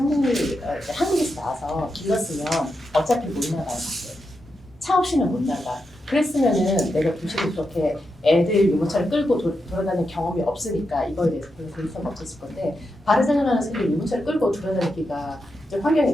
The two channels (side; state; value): both; normal; correlation 0.86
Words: 한국에서 나와서 길렀으면 어차피 못 나가요. 밖에. 차 없이는 못 나가. 그랬으면은 내가 도시로 그렇게 애들 유모차를 끌고 돌아다니는 경험이 없으니까 이거에 대해서 별로 관심이 없었을 건데 바르셀로나에서 유모차를 끌고 돌아다니기가 좀 환경이